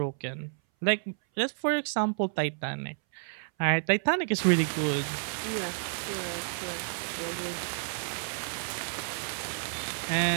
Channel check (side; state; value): left; silent; 58 dB below the other